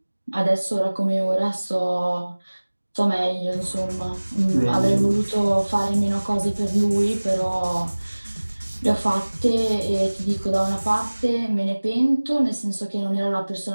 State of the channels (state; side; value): inverted; both; correlation -1.00